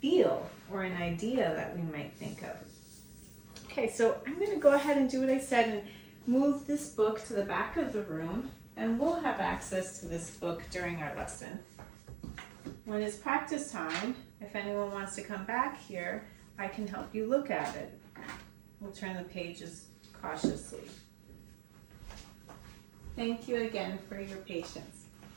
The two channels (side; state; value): left; drops out; at 11.4 s